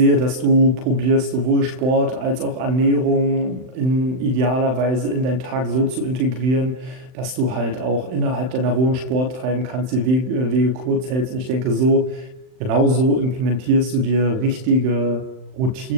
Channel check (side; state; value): left; late; 39 ms